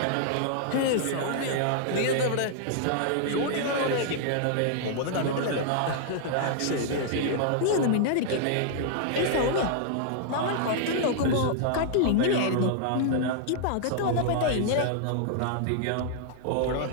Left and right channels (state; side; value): different; both; correlation -0.01